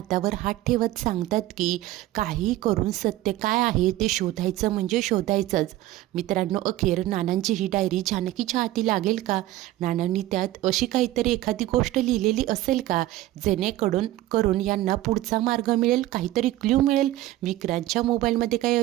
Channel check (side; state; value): left; quieter; 15.6 dB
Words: हात ठेवत सांगतात की काही करून सत्य काय आहे ते शोधायचं म्हणजे शोधायचंच. मित्रांनो, अखेर नानांची ही डायरी जानकीच्या हाती लागेल का? नानांनी त्यात अशी काहीतरी एखादी गोष्ट लिहिलेली असेल का जेणेकरून यांना पुढचा मार्ग मिळेल, काहीतरी क्ल्यू मिळेल? विक्रांतच्या मोबाईलमध्ये काही